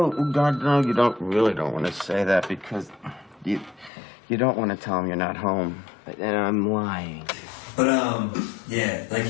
God, no, you really don't want to say that because you don't want to tell him you're not home. And I'm lying. But yeah, like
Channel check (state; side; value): drops out; right; at 3.9 s